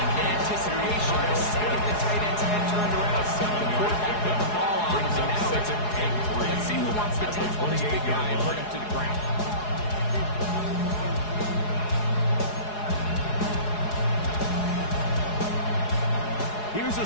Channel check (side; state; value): right; late; 4.8 ms